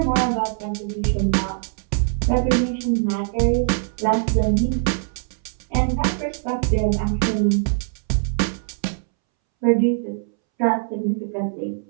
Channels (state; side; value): silent; left; 64 dB below the other